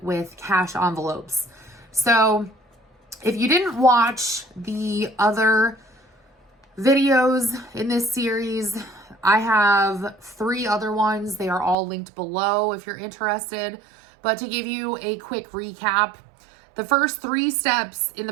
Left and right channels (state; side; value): drops out; left; at 11.8 s